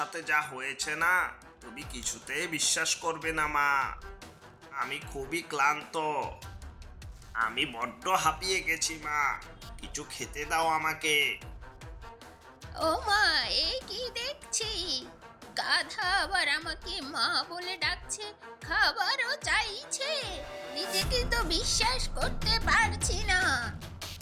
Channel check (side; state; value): both; identical; correlation 1.00